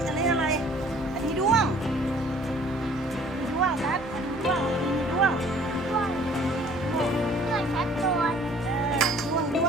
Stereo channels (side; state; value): both; normal; correlation 0.55